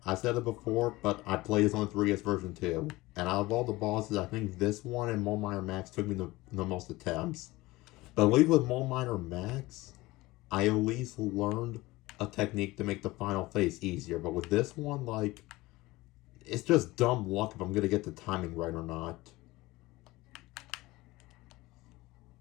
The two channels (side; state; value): right; quieter; 20.0 dB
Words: I said it before, but I played this on the 3DS version too. And out of all the bosses, I think this one and Mole Miner Max took me the most attempts. But at least with Mole Miner Max, I at least learned a technique to make the final phase easier. But with this one, like, it's just dumb luck if I'm gonna get the timing right or not.